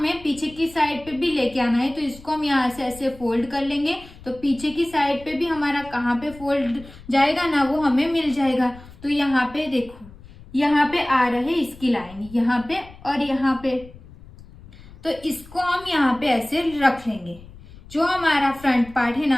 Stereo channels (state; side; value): noise; left; rumble, 20 dB below the sound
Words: पीछे की साइड पे भी लेके आना है। तो इसको हम यहाँ से ऐसे फोल्ड कर लेंगे तो पीछे की साइड पे भी हमारा कहाँ पे फोल्ड जाएगा ना वो हमें मिल जाएगा। तो यहाँ पे देखो यहाँ पे आ रहे इसकी लाइन यहाँ पे और यहाँ पे, तो इसको हम यहाँ पे ऐसे रख लेंगे। जो हमारा फ्रंट पार्ट है